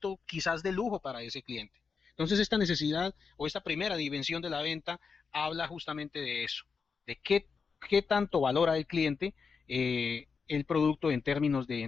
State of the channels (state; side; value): quieter; right; 5.4 dB